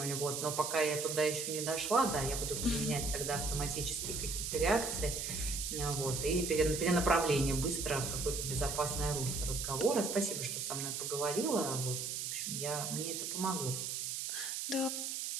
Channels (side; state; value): right; noise; hiss, 3 dB below the sound